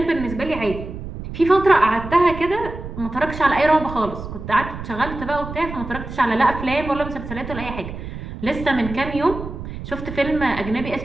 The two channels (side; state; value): right; noise; rumble, 9 dB below the sound